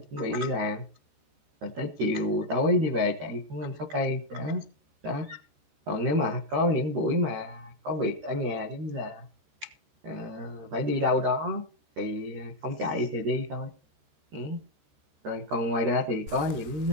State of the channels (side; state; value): left; late; 14 ms